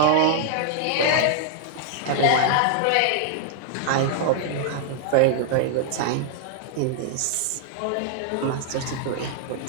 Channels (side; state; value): both; different; correlation -0.01